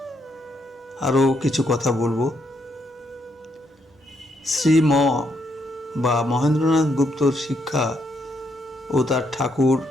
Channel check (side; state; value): both; normal; correlation 0.76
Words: আরও কিছু কথা বলবো। শ্রীম বা মহেন্দ্রনাথ গুপ্তর শিক্ষা ও তার ঠাকুর